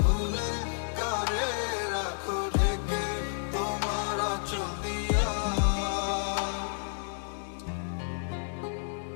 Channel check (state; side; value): silent; right; digital silence